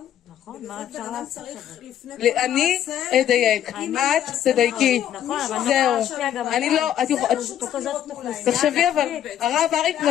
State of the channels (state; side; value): quieter; right; 10.6 dB